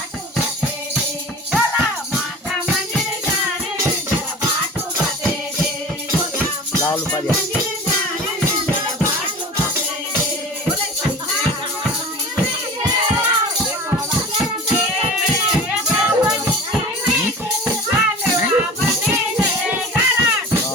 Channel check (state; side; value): normal; both; correlation 0.37